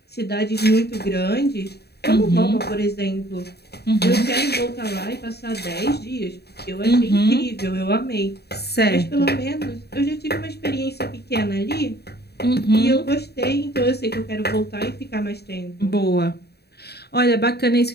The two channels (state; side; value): late; right; 0.47 ms